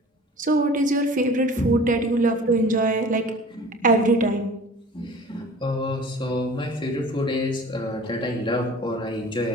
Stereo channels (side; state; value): both; normal; correlation 0.44